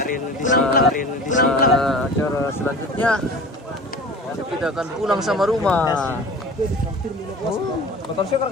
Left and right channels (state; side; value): normal; both; correlation 0.39